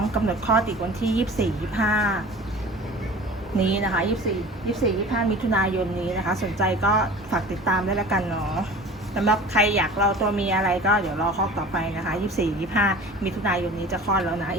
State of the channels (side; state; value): both; normal; correlation 0.40